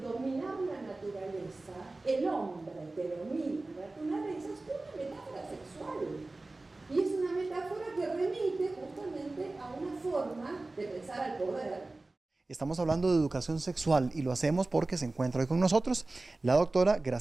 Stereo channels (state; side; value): quieter; left; 3.1 dB